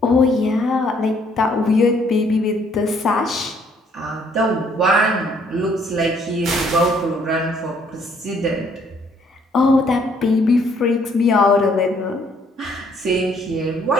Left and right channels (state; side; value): normal; both; correlation 0.65